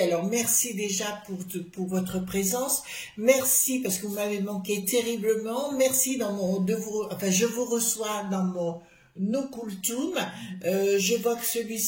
merci déjà pour votre présence, merci parce que vous m'avez manqué terriblement, merci je vous reçois dans mon Nokultum. Je vois que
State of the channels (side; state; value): both; identical; correlation 1.00